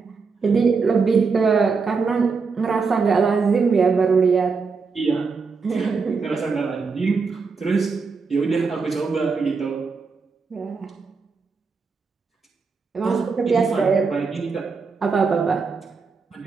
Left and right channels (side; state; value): left; quieter; 4.8 dB